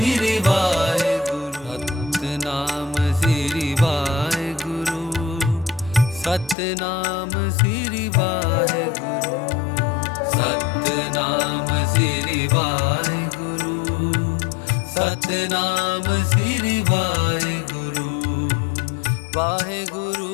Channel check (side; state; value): right; drops out; at 6.6 s